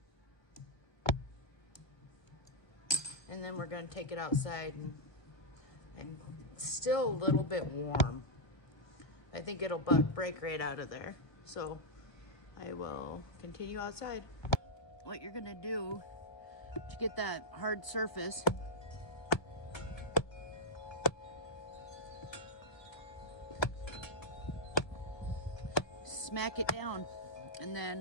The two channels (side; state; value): right; late; 1.5 ms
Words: And then we're going to take it outside, and it's still a little bit warm. I think it'll break right out of there. So I will continue outside. What you're going to do to get that hard surface, smack it down, and